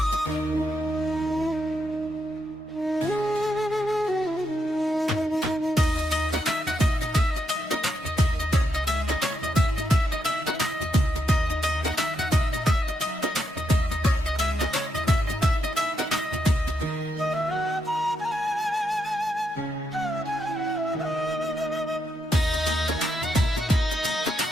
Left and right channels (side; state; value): both; normal; correlation 0.80